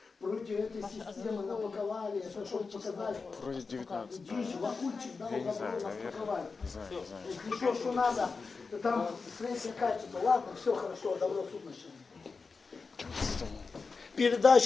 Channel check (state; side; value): quieter; right; 4.5 dB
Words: против этой системы напаковали, это чтобы показать. Вроде 19. Дичь, Вакульчик дал Я не добро знаю, нас наверное. паковать. Не знаю. Если что надо, там среднее качество. Ладно, все хорошо, добро суд начали.